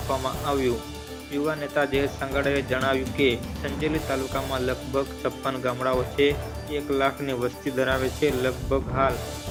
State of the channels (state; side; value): identical; both; correlation 1.00